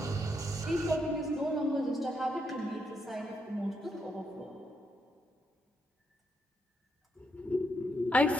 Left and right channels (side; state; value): both; normal; correlation 0.79